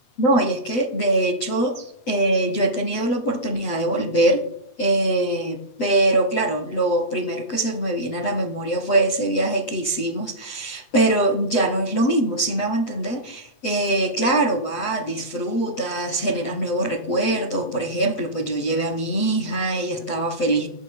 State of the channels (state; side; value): late; right; 8.3 ms